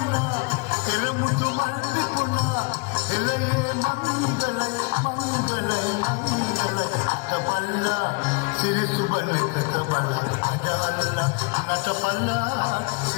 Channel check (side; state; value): right; quieter; 29.7 dB